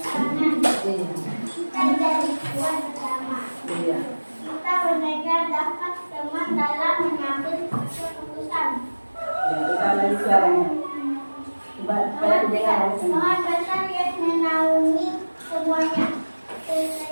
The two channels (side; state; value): both; inverted; correlation -1.00